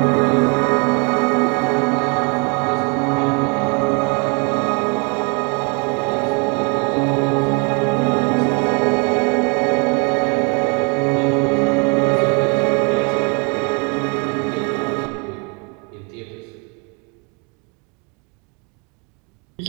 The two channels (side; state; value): left; quieter; 32.7 dB